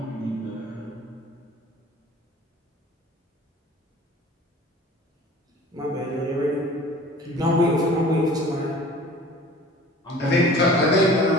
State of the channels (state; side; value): normal; both; correlation 0.45